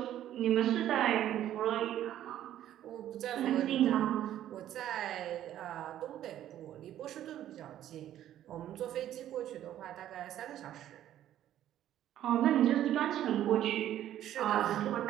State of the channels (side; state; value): left; quieter; 11.9 dB